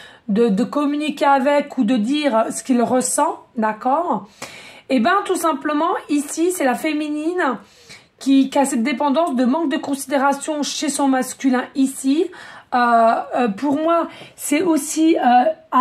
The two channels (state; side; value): identical; both; correlation 1.00